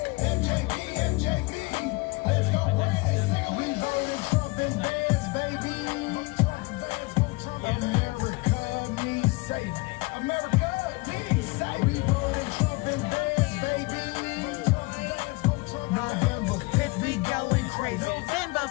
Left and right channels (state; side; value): quieter; right; 24.8 dB